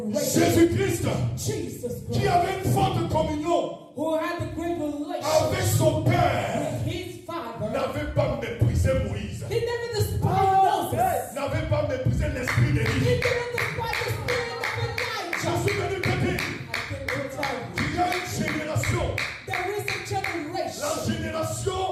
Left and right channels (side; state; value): both; identical; correlation 1.00